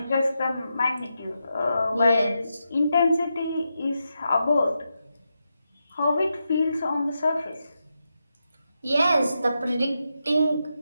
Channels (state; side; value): inverted; both; correlation -0.86